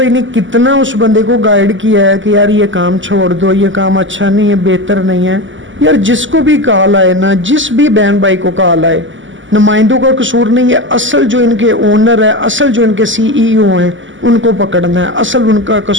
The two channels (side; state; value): left; late; 0.55 ms